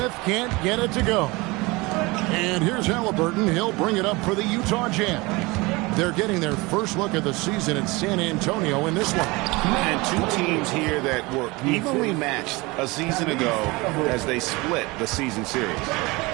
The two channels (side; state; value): left; quieter; 23.8 dB